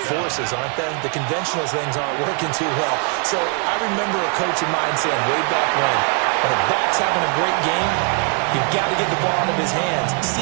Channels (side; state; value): left; quieter; 38.9 dB